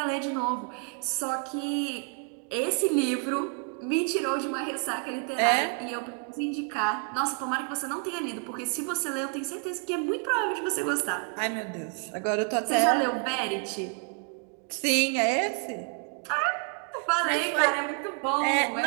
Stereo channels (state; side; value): quieter; left; 36.2 dB